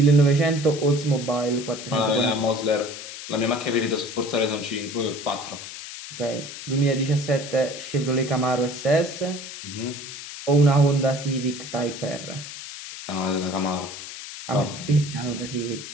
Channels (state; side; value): noise; left; hiss, 11 dB below the sound